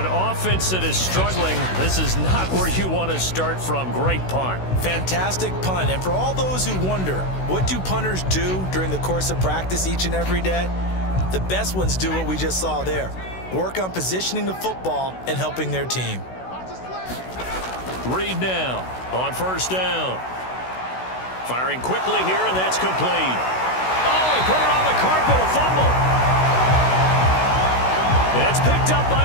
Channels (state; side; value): late; right; 16 ms